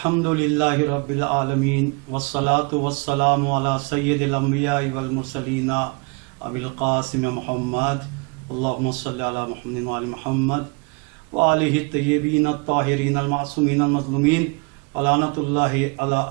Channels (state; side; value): quieter; left; 31.5 dB